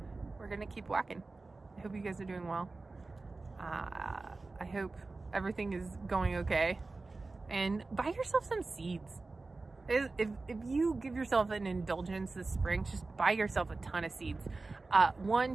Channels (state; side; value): quieter; left; 3.5 dB